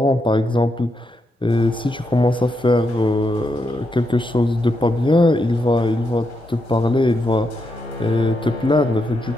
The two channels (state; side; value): normal; both; correlation 0.82